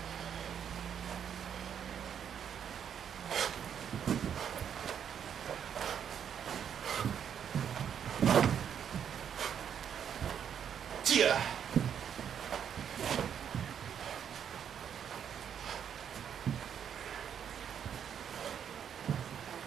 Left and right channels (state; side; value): quieter; left; 8.4 dB